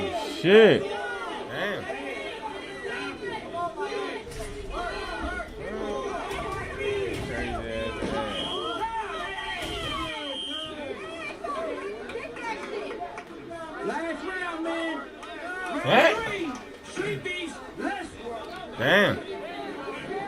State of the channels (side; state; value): both; identical; correlation 1.00